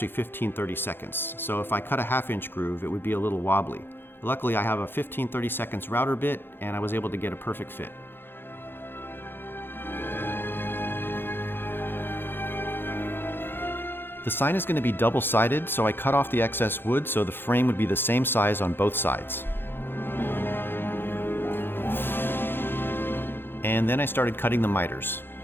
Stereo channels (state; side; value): late; right; 0.10 ms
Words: 15/32. So if I cut a 1/2 inch groove, it would be a little wobbly. Luckily I have a 15/32 router bit and I was able to get a perfect fit. The sign is going to be double-sided, so I cut off the excess wood so the frame would be the same size on both sides. And then I started cutting the miters.